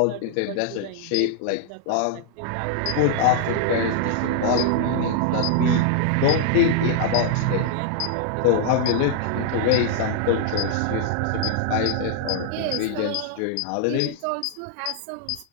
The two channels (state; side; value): different; both; correlation -0.01